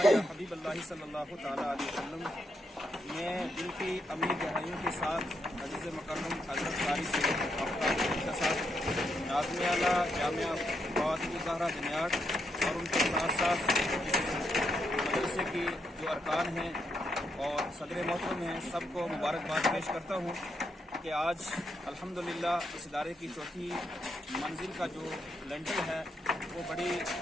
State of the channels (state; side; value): normal; both; correlation 0.80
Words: या हबीब अल्लाह सल्लल्लाहु तआला अलैहि वसल्लम। मैं दिल की अमीर गहराइयों के साथ अज़ीज़ मुकर्रम हज़रत कारी सैयद आफ्ताब के साथ नाज़िम आला जामिया फातिमा ज़हरा जनियाट और उनके साथ साथ मदरसे की जो अरकान हैं और सदर मोहतरम हैं, सबको मुबारकबाद पेश करता हूँ कि आज अल्हम्दुलिल्लाह इस इदारे की चौथी मंजिल का जो लेंटर है वो बड़ी